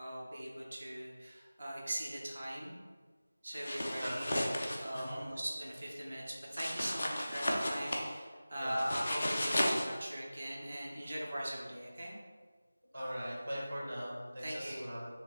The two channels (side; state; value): both; inverted; correlation -0.96